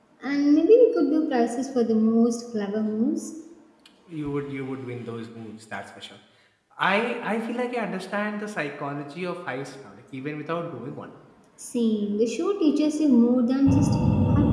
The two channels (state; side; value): identical; both; correlation 1.00